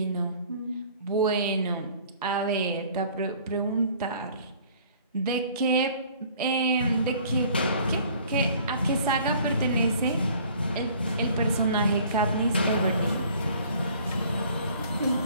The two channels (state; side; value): inverted; both; correlation -0.53